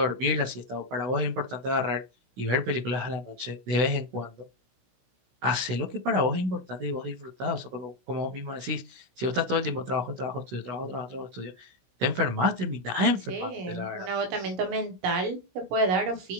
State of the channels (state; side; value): late; left; 16 ms